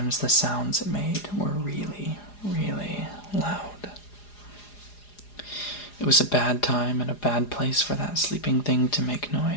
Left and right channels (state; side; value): late; right; 4.9 ms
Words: the sounds it made were really, really loud. It was a bad time and a bad place for that sleeping thing to make